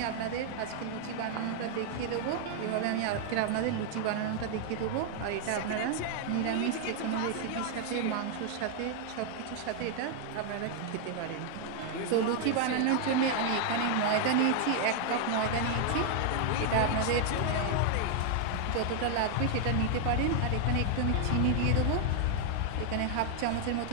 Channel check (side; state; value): both; different; correlation 0.00